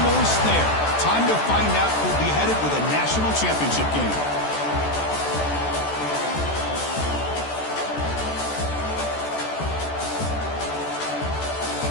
there. Time to find out who'll be headed with a national championship game.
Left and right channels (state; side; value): late; right; 14 ms